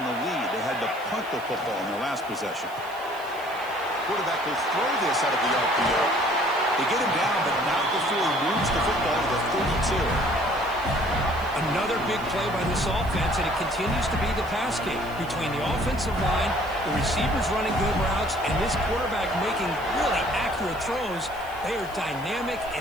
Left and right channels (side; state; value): right; noise; hiss, 21 dB below the sound